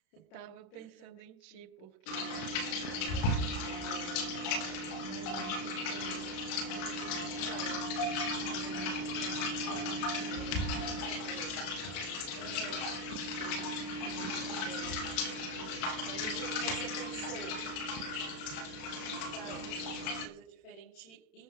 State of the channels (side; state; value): right; late; 32 ms